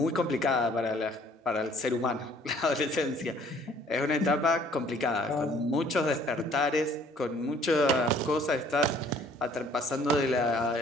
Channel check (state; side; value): normal; both; correlation 0.57